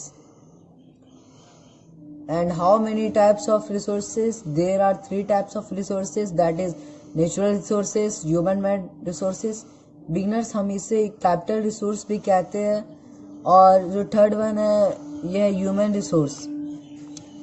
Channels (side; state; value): both; identical; correlation 1.00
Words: and how many types of resources. There are 3 types of resources, that is natural resources, human made resources. Beginners हम इसे कैपिटल रिसोर्स भी कहते हैं और जो थर्ड वन है यह है ह्यूमन रिसोर्स।